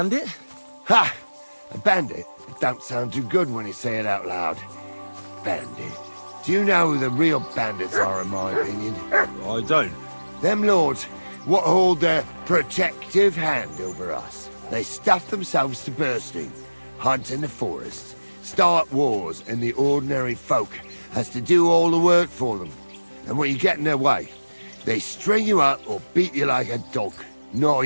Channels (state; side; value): inverted; both; correlation -1.00